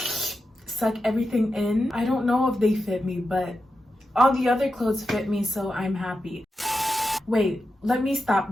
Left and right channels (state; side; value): normal; both; correlation 0.89